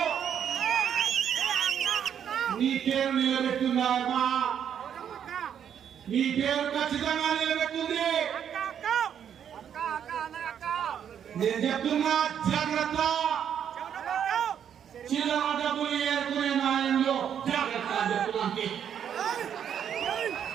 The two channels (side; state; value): left; quieter; 8.7 dB